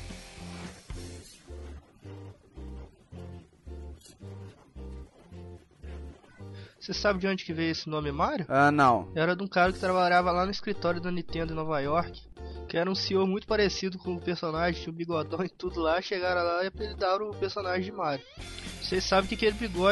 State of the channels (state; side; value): identical; both; correlation 1.00